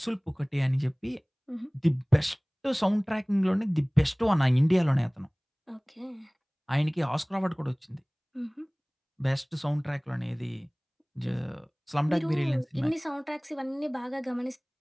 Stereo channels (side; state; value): both; identical; correlation 1.00